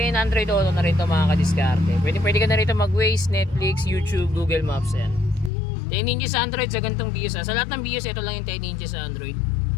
and Android Auto na rin ito mga kadiskarte. Pwede ka na rito mag-Waze, Netflix, YouTube, Google Maps. Ayan. 10 inches Android sa ganitong Vios. Sa lahat ng Vios, ito lang yung 10 inches Android.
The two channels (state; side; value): drops out; right; at 5.5 s